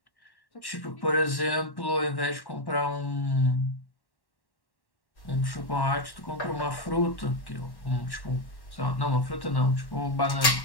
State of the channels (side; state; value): right; late; 1.1 ms